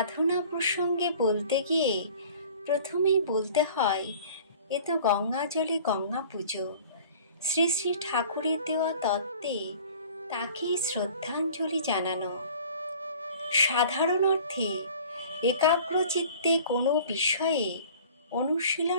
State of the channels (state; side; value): inverted; both; correlation -0.47